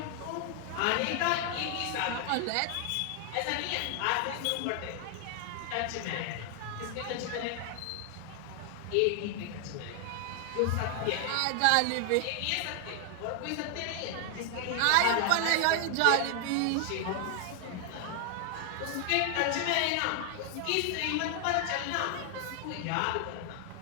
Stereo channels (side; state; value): both; different; correlation 0.00